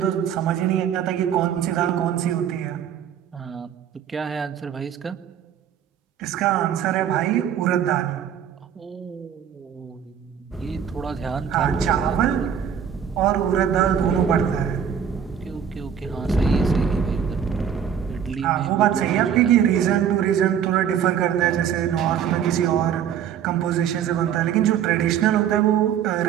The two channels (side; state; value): left; quieter; 8.6 dB